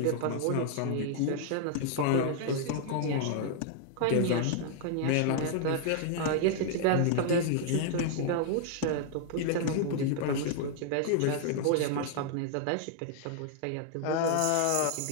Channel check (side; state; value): both; different; correlation 0.00